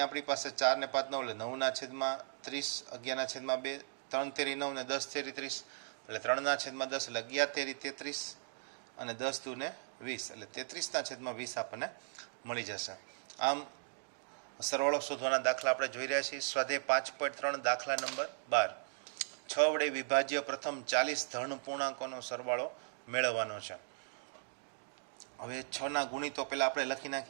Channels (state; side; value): silent; left; digital silence